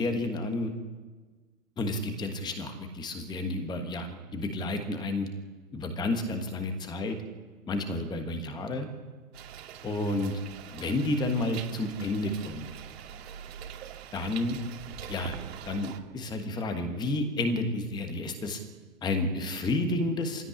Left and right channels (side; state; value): both; normal; correlation 0.33